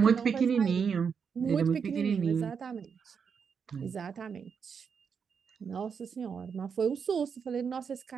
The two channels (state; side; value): quieter; left; 6.4 dB